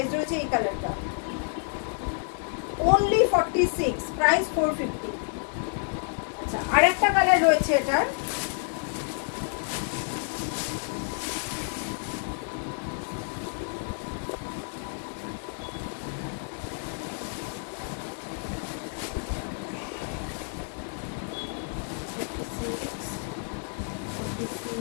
রয়েছে এই কালারটা, only 46, প্রাইস 450। আচ্ছা আরেকটা কালার রয়েছে এটার,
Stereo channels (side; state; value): right; silent; 59 dB below the other